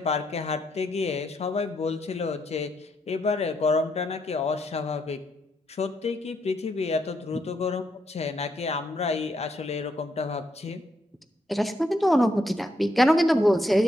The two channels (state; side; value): normal; both; correlation 0.77